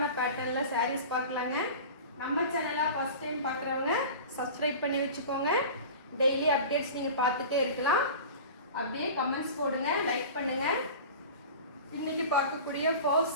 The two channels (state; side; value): inverted; both; correlation -0.35